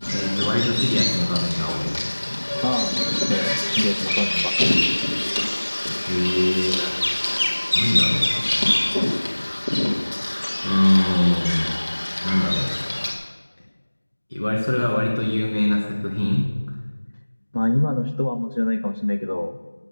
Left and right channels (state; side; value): inverted; both; correlation -1.00